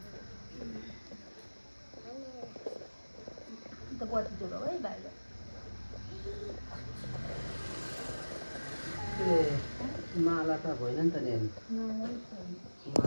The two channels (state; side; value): inverted; both; correlation -1.00